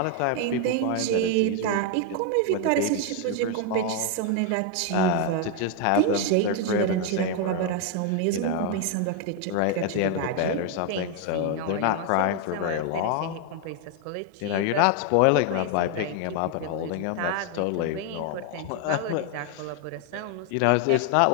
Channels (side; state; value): both; different; correlation 0.01